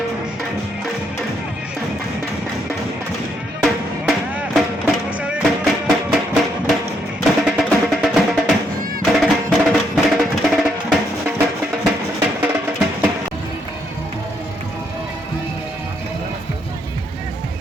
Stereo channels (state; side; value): normal; both; correlation 0.75